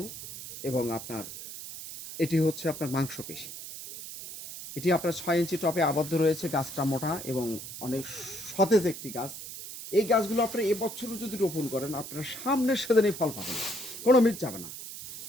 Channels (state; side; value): noise; right; hiss, 10 dB below the sound